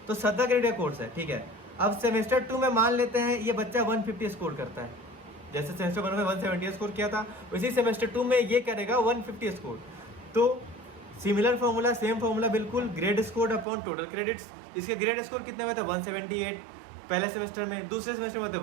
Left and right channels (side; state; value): left; drops out; at 13.7 s